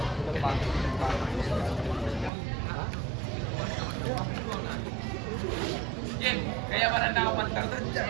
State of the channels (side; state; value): left; drops out; at 2.3 s